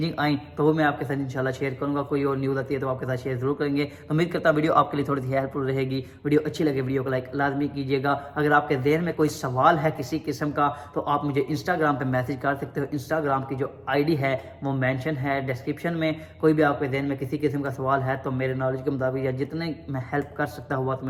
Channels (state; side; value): identical; both; correlation 1.00